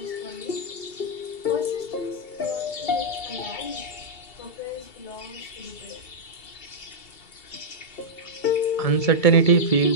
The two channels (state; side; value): late; right; 2.3 ms